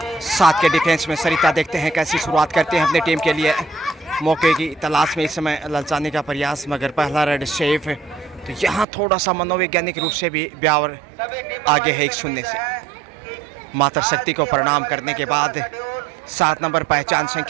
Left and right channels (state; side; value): drops out; left; at 8.8 s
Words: 7 के डिफेंस में सरिता देखते हैं कैसी शुरुआत करते हैं अपने टीम के लिए। मौके की तलाश में इस समय ललचाने का प्रयास, मगर पहला रेड सेफ है। तो यहाँ थोड़ा सा मनोवैज्ञानिक रूप से भी ब्यावर आगे है 1-0 से। मातर शक्ति को प्रणाम करने के बाद 7 नंबर पहचान